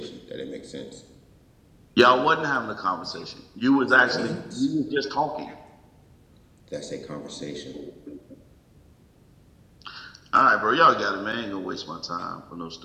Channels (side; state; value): both; identical; correlation 1.00